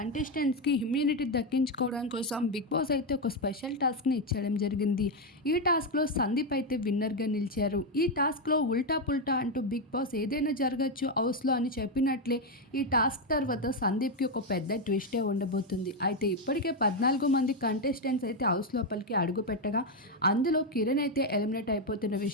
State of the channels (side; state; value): both; normal; correlation 0.05